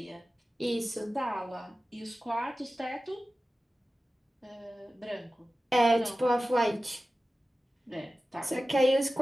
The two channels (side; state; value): both; normal; correlation 0.95